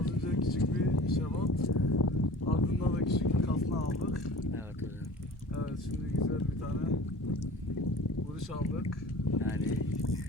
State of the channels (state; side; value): normal; both; correlation 0.42